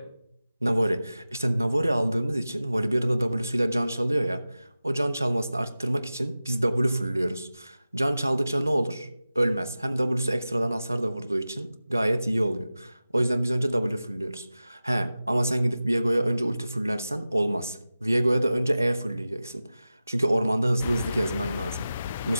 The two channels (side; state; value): both; inverted; correlation -0.95